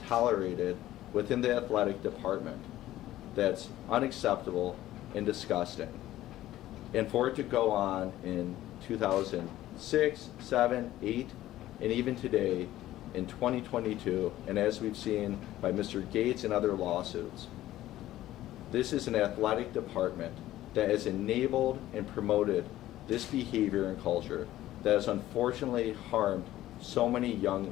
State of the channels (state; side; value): quieter; right; 14.5 dB